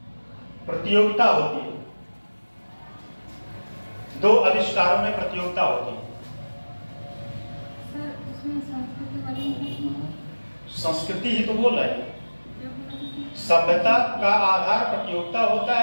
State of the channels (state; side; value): inverted; both; correlation -1.00